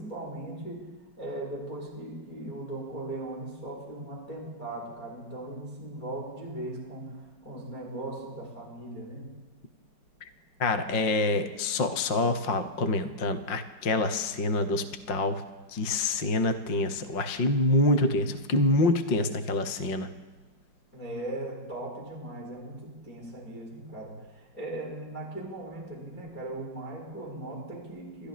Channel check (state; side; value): late; right; 5.5 ms